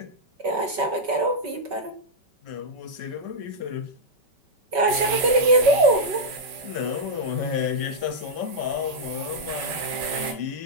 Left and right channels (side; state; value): left; late; 5.2 ms